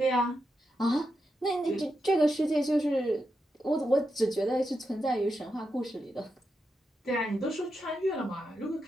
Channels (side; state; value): both; normal; correlation 0.86